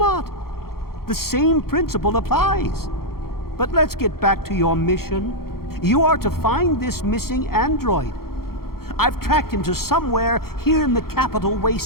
The same principle applies. But let's get back to your mission. You are to find this missing android. I've tracked him to somewhere here in the capital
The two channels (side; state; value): right; late; 0.94 ms